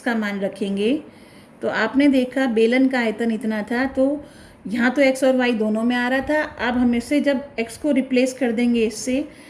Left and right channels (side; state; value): both; identical; correlation 1.00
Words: का मान रखेंगे, तो आपने देखा बेलन का आयतन इतना था, तो यहाँ तो x और y दोनों में आ रहा था। अब हम इससे जब x को रिप्लेस कर देंगे इससे,